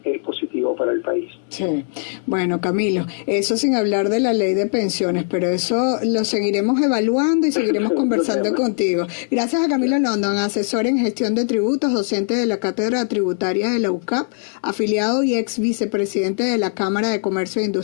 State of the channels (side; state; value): right; silent; digital silence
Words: es positivo para el país. Sí, bueno, Camilo, eso sin hablar de la ley de pensiones, pero eso lo seguiremos evaluando y seguiremos conversando contigo. Gracias a Camilo London, asesor en gestión de tributos, docente de la Cátedra Tributaria de la UCAP, afiliado y ex vicepresidente de la Cámara de Comercio e